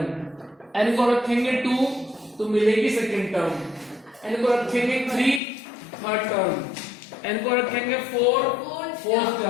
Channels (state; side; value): drops out; right; at 5.4 s